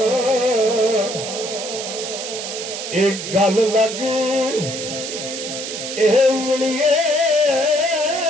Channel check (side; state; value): right; noise; hiss, 7 dB below the sound